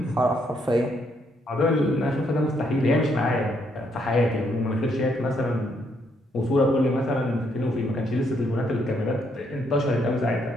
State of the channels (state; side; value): normal; both; correlation 0.73